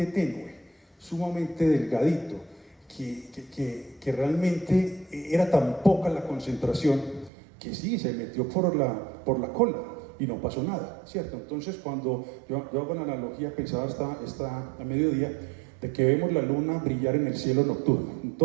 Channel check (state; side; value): drops out; left; at 7.3 s